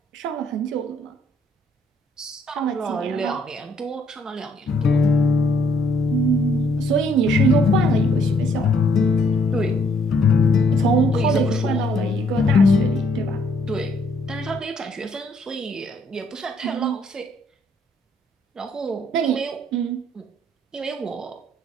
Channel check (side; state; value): both; normal; correlation 0.67